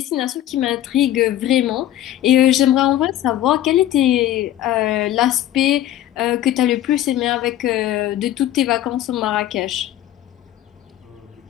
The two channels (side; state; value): right; quieter; 12.8 dB